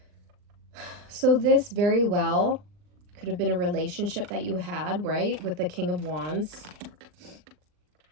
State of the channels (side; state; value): left; late; 39 ms